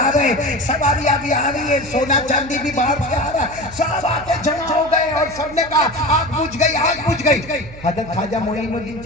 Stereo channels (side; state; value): right; noise; hum, 17 dB below the sound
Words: रहे हैं, सवारियां भी आ रही है, सोना चांदी भी बाहर से आ रहा है, सब आके जमा हो गए और सबने कहा आग बुझ गई। हजरत ख्वाजा मोइनुद्दीन